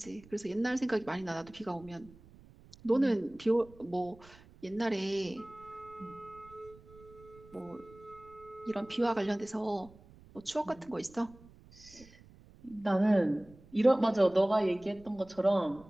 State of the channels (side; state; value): right; noise; rumble, 23 dB below the sound